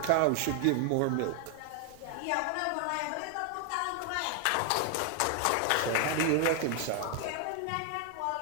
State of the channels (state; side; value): different; both; correlation 0.00